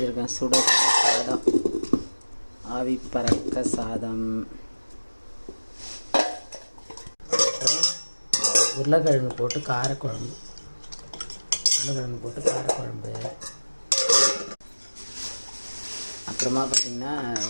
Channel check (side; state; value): both; inverted; correlation -1.00